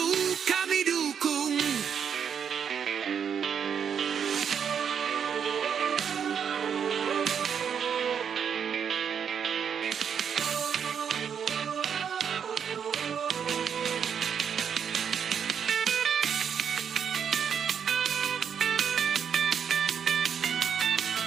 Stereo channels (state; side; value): quieter; left; 7.6 dB